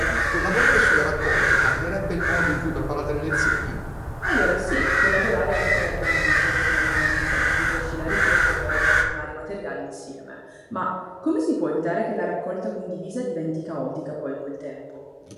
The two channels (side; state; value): both; identical; correlation 1.00